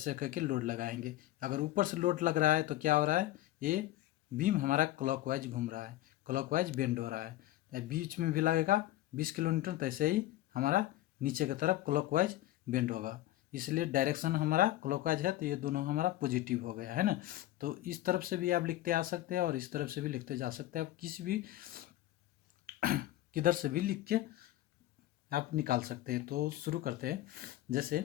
करके लोड लगाएंगे। अगर ऊपर से लोड लग रहा है तो क्या हो रहा है, ये बीम हमारा क्लॉकवाइज घूम रहा है, क्लॉकवाइज बेंड हो रहा है। बीच में भी लगेगा 20 किलो न्यूटन, तो ऐसे ही हमारा नीचे की तरफ क्लॉकवाइज बेंड होगा, इसलिए डायरेक्शन हमारा क्लॉकवाइज है, तो ये दोनों हमारा पॉजिटिव हो गया, है ना। तो इस तरफ से भी आप लिखते आ सकते हैं और इस तरफ से भी लिखते जा सकते हैं, आप किसी भी किधर से भी लिख के आप निकाल सकते हैं। तो शुरू करते हैं। जैसे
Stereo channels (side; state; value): right; quieter; 15.3 dB